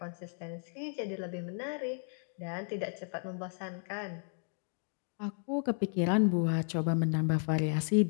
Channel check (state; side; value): silent; right; 55 dB below the other